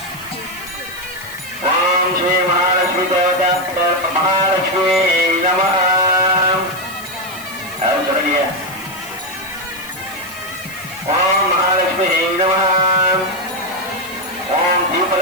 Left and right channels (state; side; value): noise; left; hiss, 16 dB below the sound